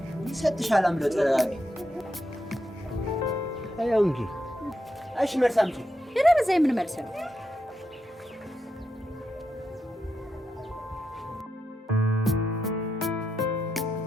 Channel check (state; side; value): normal; both; correlation 0.85